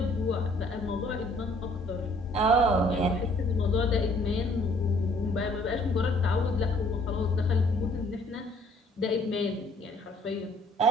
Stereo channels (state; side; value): normal; both; correlation 0.61